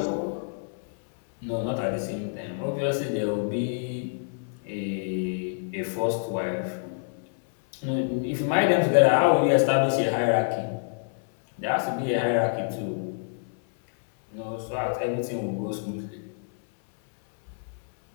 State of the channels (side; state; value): right; silent; 60 dB below the other